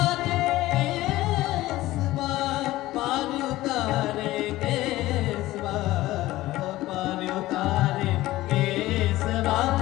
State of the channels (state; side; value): quieter; right; 16.9 dB